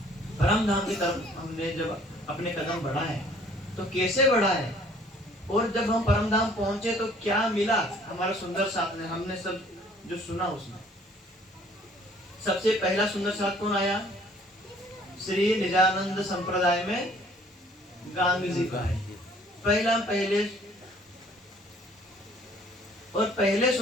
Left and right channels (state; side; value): normal; both; correlation 0.57